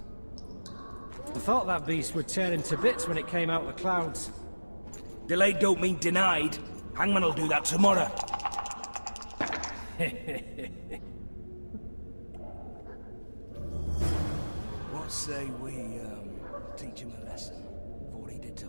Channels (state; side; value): inverted; both; correlation -1.00